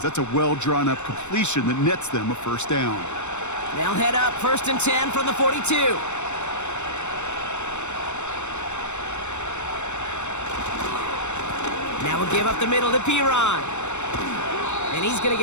That's a well-drawn-up completion that nets them a first down. They'll head up 1st and 10 from the 42. Now we'll give up the middle to Piron. And he's going to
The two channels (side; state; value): right; late; 0.83 ms